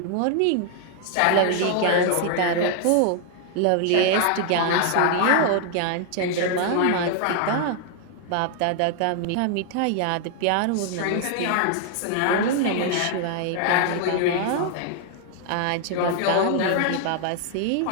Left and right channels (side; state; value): both; different; correlation 0.00